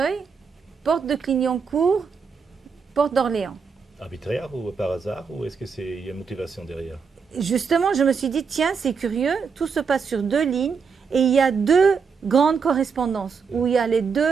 porte de Clignancourt, porte d'Orléans. Arbitraire ou par hasard, ou est-ce qu'il y a une motivation derrière? Justement, je me suis dit, tiens, c'est curieux, tout se passe sur 2 lignes et il y a 2 grandes correspondances où il y a les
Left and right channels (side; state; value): left; quieter; 5.7 dB